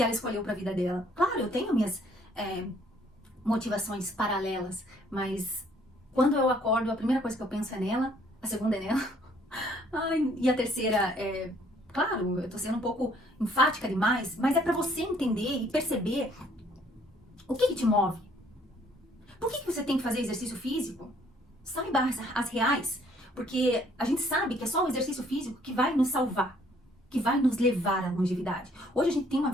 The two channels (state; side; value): normal; both; correlation 0.62